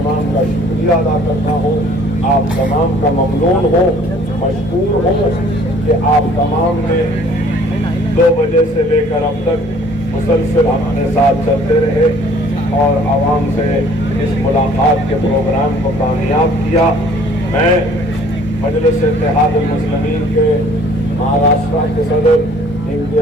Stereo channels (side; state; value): both; normal; correlation 0.55